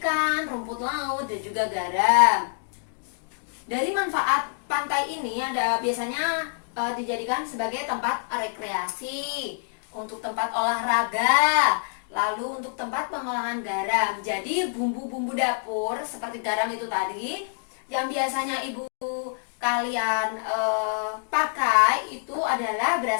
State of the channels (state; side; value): silent; right; digital silence